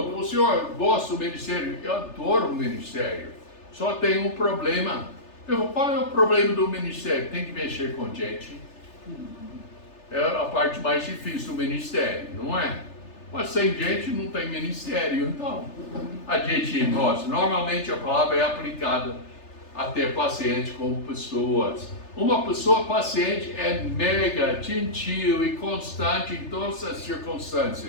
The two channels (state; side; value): late; right; 3.3 ms